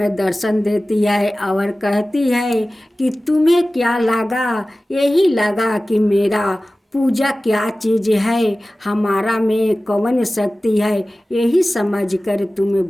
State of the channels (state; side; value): normal; both; correlation 0.97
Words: दर्शन देती है और कहती है कि तुम्हें क्या लगा, यही लगा कि मेरा पूजा क्या चीज़ है, हमारा में कौन शक्ति है, यही समझकर तुम्हें